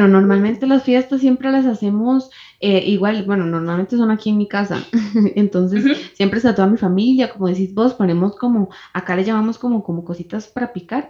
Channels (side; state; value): both; identical; correlation 1.00